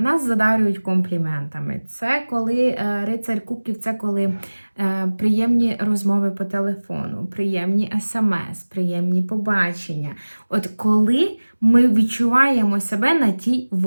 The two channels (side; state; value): both; inverted; correlation -1.00